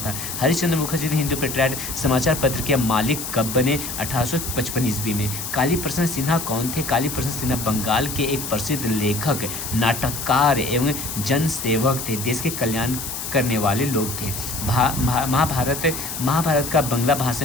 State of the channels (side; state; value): left; noise; hiss, 6 dB below the sound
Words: हरिश्चंद्र मुखर्जी हिंदू पेट्रियाट समाचार पत्र के मालिक कब बने? 1855 ईस्वी में। काली प्रसन्न सिन्हा कौन थे? काली प्रसन्न सिन्हा बंगाल के एक प्रसिद्ध लेखक, नाटककार एवं जनसेवक थे। देश के कल्याण करने वाले लोग थे। महाभारत का बंगला भाषा